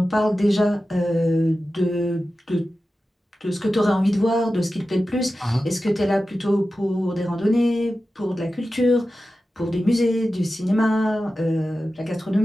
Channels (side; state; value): both; normal; correlation 0.93